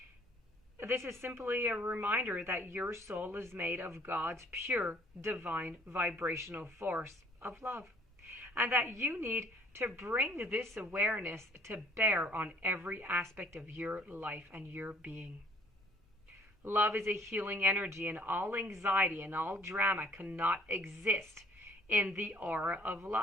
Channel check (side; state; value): both; normal; correlation 0.59